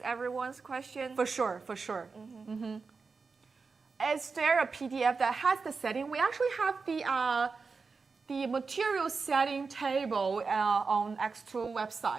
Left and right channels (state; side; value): quieter; left; 4.7 dB